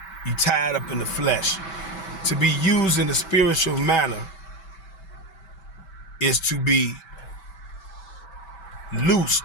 You're tied up in the flesh. To be used in a spiritual manner is to be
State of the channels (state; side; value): late; right; 5.2 ms